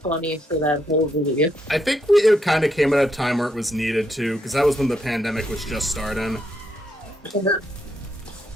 for that whole video. I think it kind of came at a time where it was needed to, because that was when the pandemic was just starting.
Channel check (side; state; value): both; normal; correlation 0.77